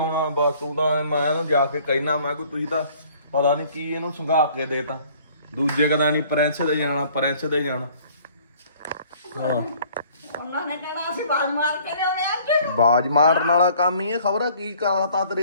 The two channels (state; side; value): inverted; both; correlation -0.56